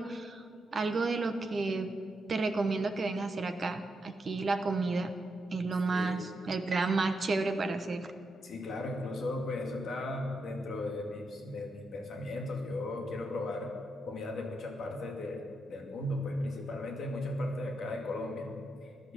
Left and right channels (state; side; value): normal; both; correlation 0.83